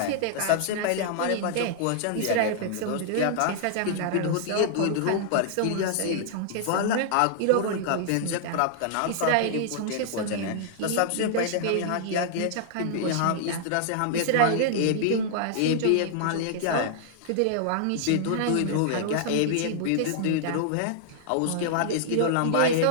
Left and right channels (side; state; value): both; different; correlation -0.01